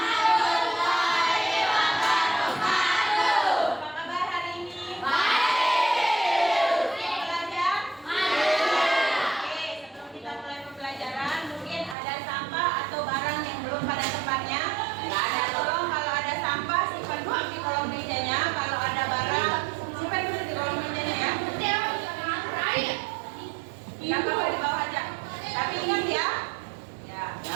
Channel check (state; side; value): drops out; left; at 12.0 s